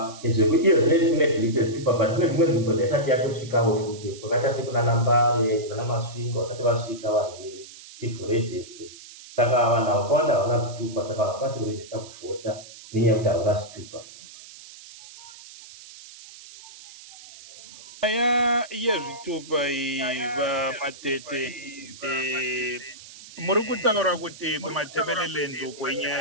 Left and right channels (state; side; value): noise; right; hiss, 18 dB below the sound